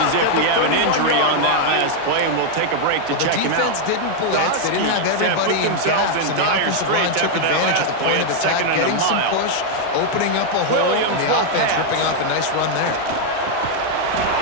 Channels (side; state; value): both; different; correlation 0.00